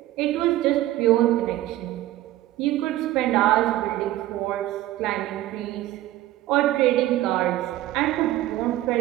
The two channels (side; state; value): left; quieter; 15.2 dB